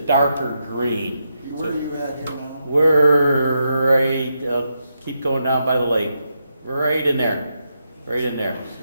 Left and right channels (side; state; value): both; inverted; correlation -0.84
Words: green. Where are you at here now? We're right, keep going down by the lake, right in there, right in there.